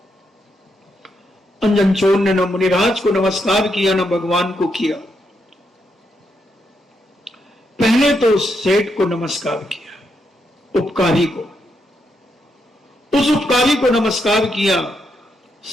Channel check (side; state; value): both; normal; correlation 0.80